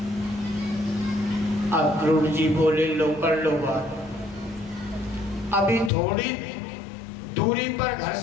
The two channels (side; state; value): right; drops out; at 5.9 s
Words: अक्रूर जी बोले, लो कर लो बात। अभी थोड़ी दूरी पर घर